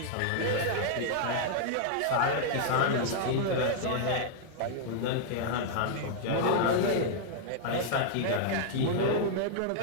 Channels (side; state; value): both; different; correlation -0.01